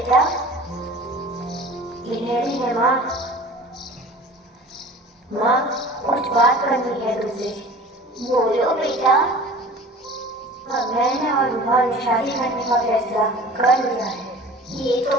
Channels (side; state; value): both; normal; correlation 0.41